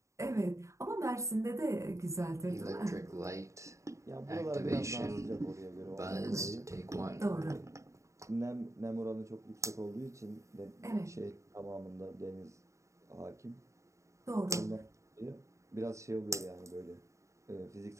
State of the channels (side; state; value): left; late; 0.15 ms